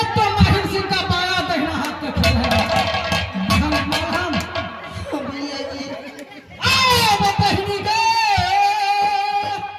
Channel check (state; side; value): identical; both; correlation 1.00